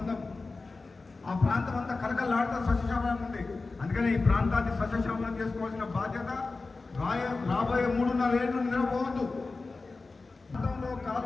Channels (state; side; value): quieter; right; 3.8 dB